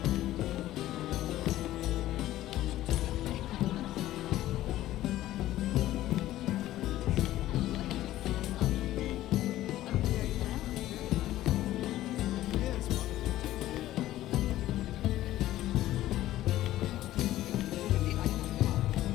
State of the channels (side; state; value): right; quieter; 14.6 dB